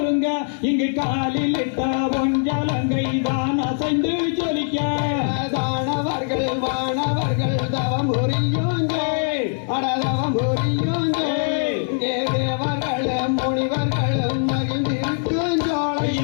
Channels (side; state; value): right; silent; 64 dB below the other